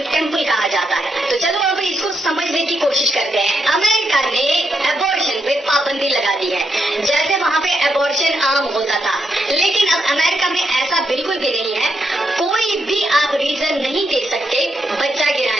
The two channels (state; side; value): normal; both; correlation 0.80